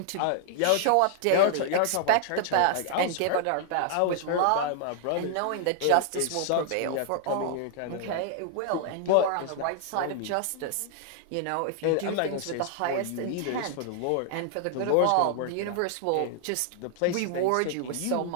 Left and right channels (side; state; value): both; different; correlation -0.01